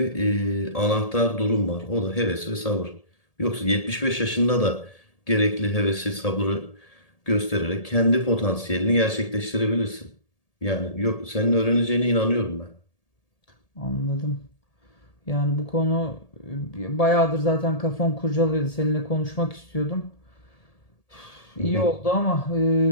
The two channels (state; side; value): late; right; 1.8 ms